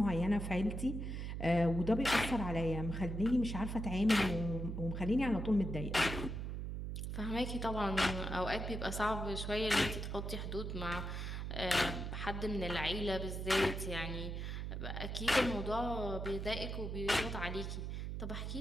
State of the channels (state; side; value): noise; right; hum, 4 dB below the sound